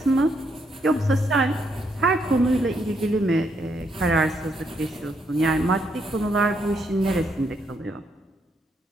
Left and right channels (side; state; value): both; normal; correlation 0.76